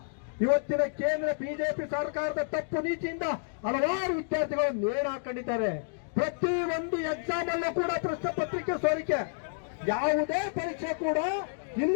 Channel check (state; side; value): silent; right; digital silence